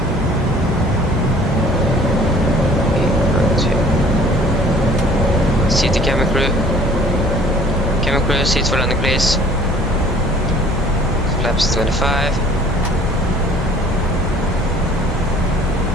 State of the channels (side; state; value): both; normal; correlation 0.53